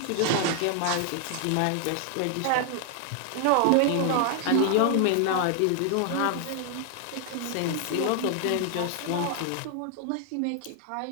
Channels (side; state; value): both; different; correlation 0.00